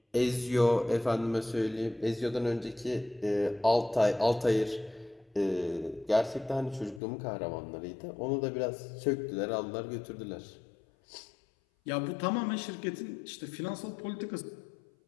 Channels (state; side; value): drops out; right; at 7.0 s